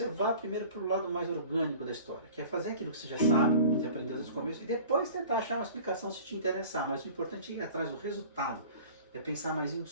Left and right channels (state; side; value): inverted; both; correlation -0.43